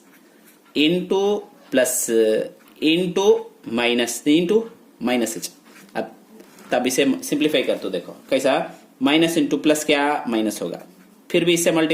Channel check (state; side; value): identical; both; correlation 1.00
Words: into plus into minus into minus. अब तब इसे सिंप्लीफाई कर तो देखो कैसा, माइनस इंटू प्लस क्या माइनस होगा, फिर भी इससे